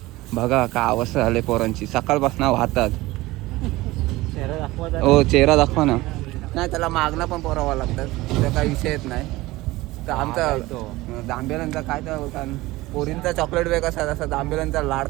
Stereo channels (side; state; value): left; quieter; 19.3 dB